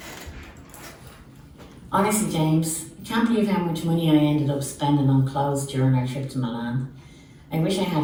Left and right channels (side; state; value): both; identical; correlation 1.00